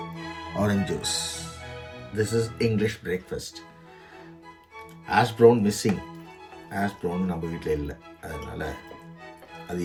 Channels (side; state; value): both; identical; correlation 1.00